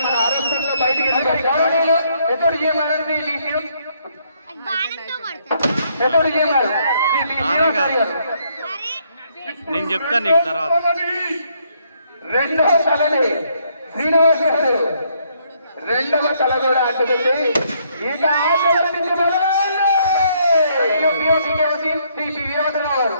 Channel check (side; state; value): both; inverted; correlation -0.70